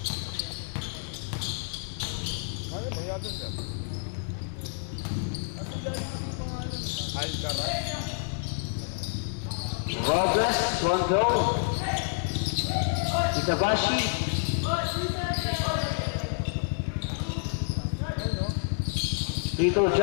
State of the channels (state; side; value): silent; right; 59 dB below the other